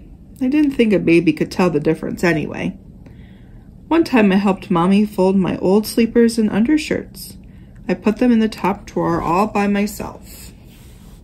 I didn't think a baby could tell the difference anyway. One time I helped Mommy fold my old sleepers and undershirts. I put them in the top drawer all by myself.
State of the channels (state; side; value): identical; both; correlation 1.00